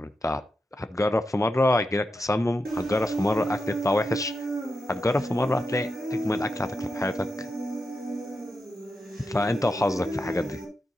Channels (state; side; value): normal; both; correlation 0.87